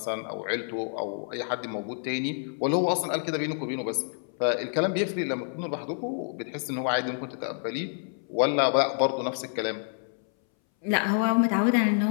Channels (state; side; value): silent; right; 59 dB below the other